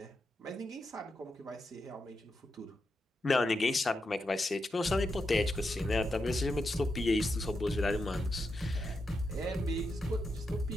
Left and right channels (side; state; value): both; normal; correlation 0.86